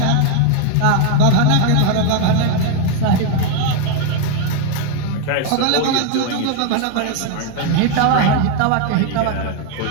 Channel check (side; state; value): both; different; correlation 0.01